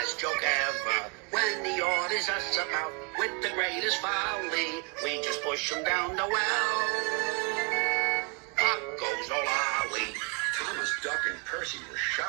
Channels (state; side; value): quieter; left; 34.7 dB